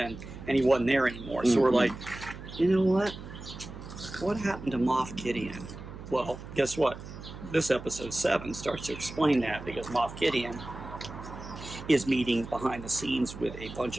and he wasn't there anymore. So we're like, you know what? What happened to Moff Gideon? Well, guess what? This episode 7 starts to explain that, because Moff Gideon is meeting behind the scenes with a bunch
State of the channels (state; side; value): noise; right; hum, 13 dB below the sound